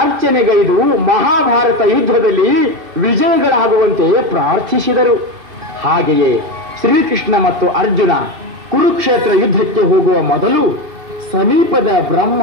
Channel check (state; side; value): late; left; 2.5 ms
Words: ಮಹಾಭಾರತ ಯುದ್ಧದಲ್ಲಿ ವಿಜಯಗಳಾಗುವಂತೆ ಪ್ರಾರ್ಥಿಸಿದರು. ಹಾಗೆಯೇ ಶ್ರೀಕೃಷ್ಣ ಮತ್ತು ಅರ್ಜುನ ಕುರುಕ್ಷೇತ್ರ ಯುದ್ಧಕ್ಕೆ ಹೋಗುವ ಮೊದಲು ಸಮೀಪದ